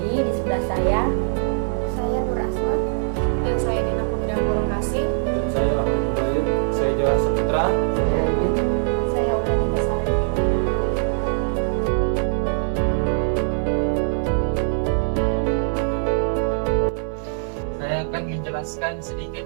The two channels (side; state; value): left; silent; 58 dB below the other